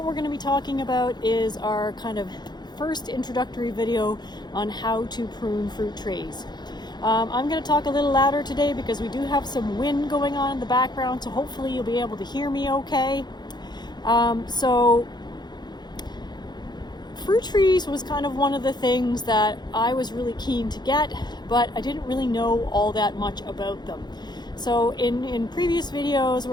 we're going to be talking about is our kind of first introductory video on how to prune fruit trees. I'm going to talk a little louder today because we do have some wind going on in the background, so hopefully you'll be able to hear me okay. Fruit trees was kind of one of the things that I was really keen to get, but I didn't really know all that much about them. So in previous videos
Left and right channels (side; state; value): right; late; 0.21 ms